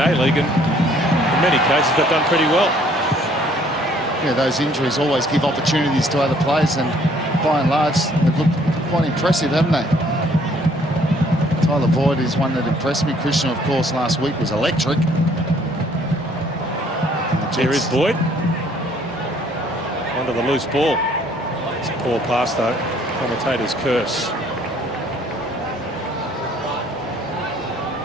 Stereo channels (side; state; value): both; normal; correlation 0.61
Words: League, and in many cases they've done pretty well. Yeah, those injuries always give opportunities to other players, and by and large they've looked quite impressive, haven't they? Tyler Boyd is one that impressed me. Krishna, of course, last week was electric. Here is Boyd. Under the loose ball. It's a poor pass, though. Commentator's curse.